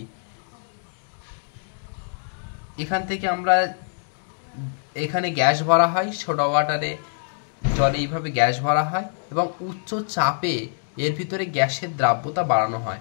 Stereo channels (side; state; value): right; silent; digital silence